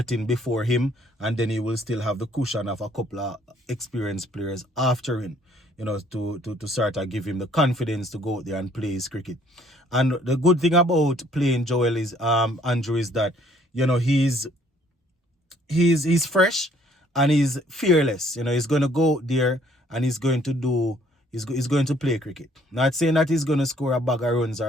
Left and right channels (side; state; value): both; normal; correlation 0.62